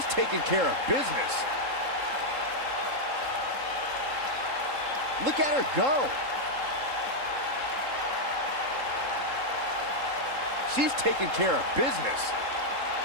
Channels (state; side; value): late; left; 3.7 ms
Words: taking care of business. Look at her go. She's taking care of business.